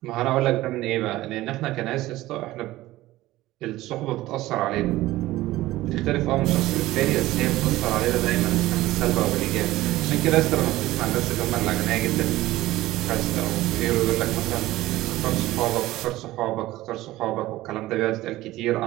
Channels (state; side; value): quieter; left; 16.9 dB